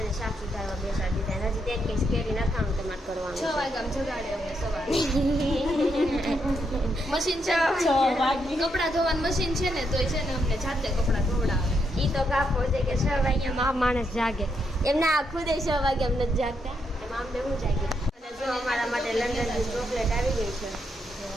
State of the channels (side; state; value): both; normal; correlation 0.79